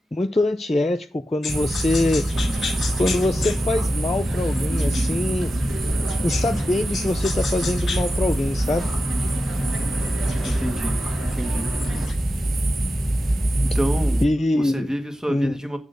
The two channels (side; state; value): both; normal; correlation 0.91